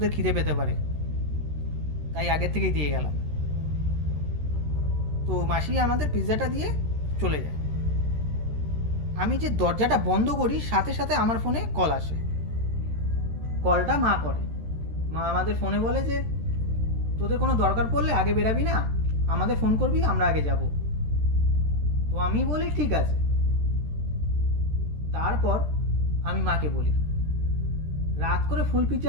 খিদে পেতে পারে, তাই আগের থেকেই দিয়ে গেলাম। তো মাসি আমাদের পিৎজাটা দিয়ে চলে যায়। আমি যে দরজাটা বন্ধ করি, সাথে সাথে আমার ফোনে কল আসে। কলটা মা করে। মা আমাদের ফোনে বলে যে, তোদের কোনো দরকার পড়লে আগে বেরাবি না, আমাদের ফোন করবি, আমরা আগে যাব। তো আমি বলি ঠিক আছে। তারপর আমি মাকে বলি, রাত করে ফুল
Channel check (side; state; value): left; late; 13 ms